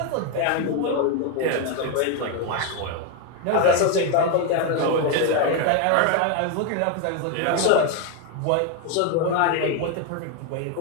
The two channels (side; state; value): both; different; correlation 0.01